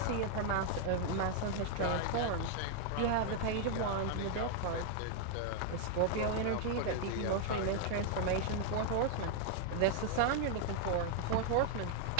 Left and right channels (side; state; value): both; different; correlation 0.00